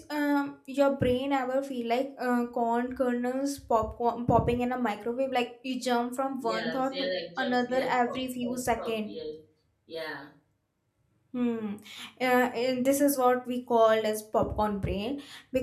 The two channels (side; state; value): both; identical; correlation 1.00